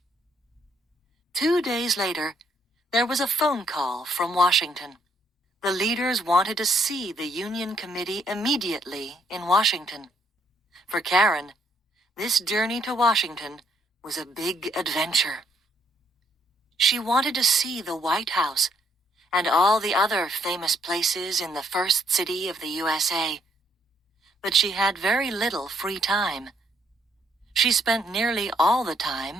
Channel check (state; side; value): normal; both; correlation 0.71